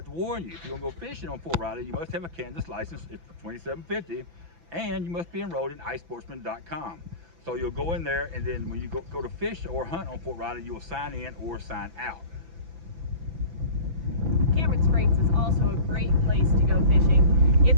to warn you, if you're gonna go fishing on Fort Riley, you must have a Kansas license. It's $27.50, and you must be enrolled in iSportsman.com. So you'll go in there, and then when you go to fish or hunt on Fort Riley, you will sign in or sign out. Cameron Springs is also a great place to go fishing.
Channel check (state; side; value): late; left; 5.9 ms